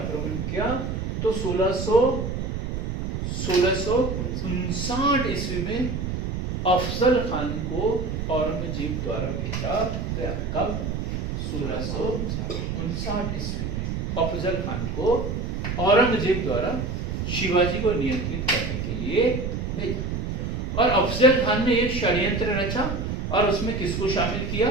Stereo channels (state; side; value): noise; right; rumble, 3 dB below the sound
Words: किया। तो 1659 ईस्वी में अफजल खान को औरंगजेब द्वारा भेजा गया। कब? 1659 ईस्वी में अफजल खान को औरंगजेब द्वारा शिवाजी को नियंत्रित करने के लिए भेजा। और अफजल खान ने एक षड्यंत्र रचा और उसमें किसको शामिल किया?